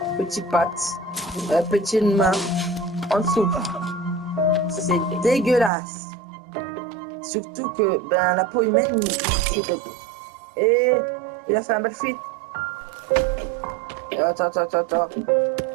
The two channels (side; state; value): left; drops out; at 5.7 s